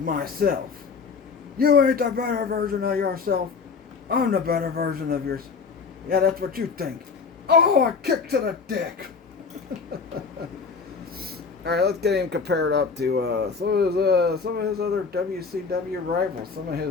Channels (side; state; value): right; quieter; 5.2 dB